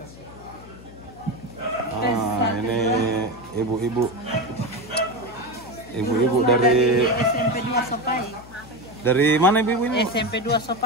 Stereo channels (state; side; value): noise; left; hum, 18 dB below the sound